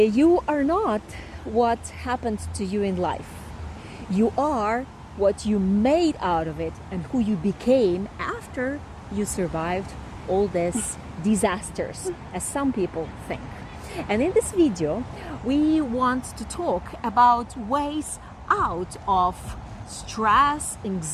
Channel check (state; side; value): identical; both; correlation 1.00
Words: are not what happened to you in life. You are what you made out of it and who you became after you survived all these disasters, as some people think. And in this video, we want to talk about ways out of stress,